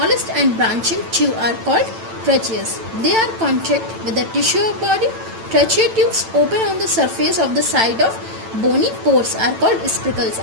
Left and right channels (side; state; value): left; late; 9.0 ms